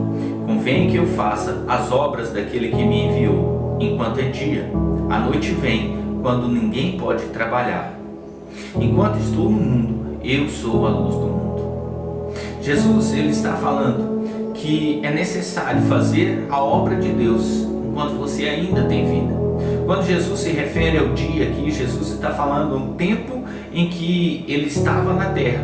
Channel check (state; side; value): identical; both; correlation 1.00